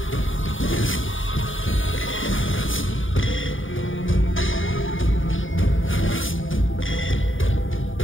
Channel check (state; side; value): late; right; 0.57 ms